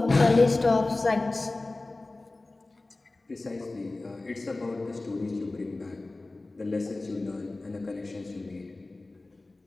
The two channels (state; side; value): quieter; right; 3.1 dB